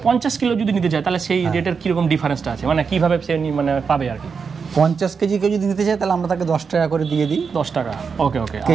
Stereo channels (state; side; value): quieter; left; 5.7 dB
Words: 50 কিলো যদি নিতে চায় তাহলে সেই রেটের কি রকম ডিফারেন্সটা আছে, মানে কিভাবে সে মানে পাবে আর কি? 50 কেজি কেউ যদি নিতে চায় তাহলে আমরা তাকে 10 টাকা করে দিয়ে দিই। 10 টাকা, ওকে